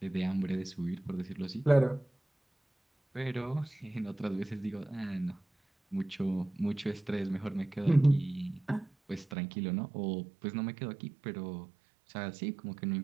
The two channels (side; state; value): left; drops out; at 9.3 s